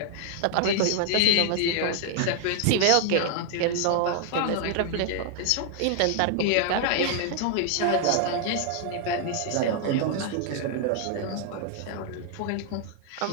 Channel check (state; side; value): different; both; correlation 0.00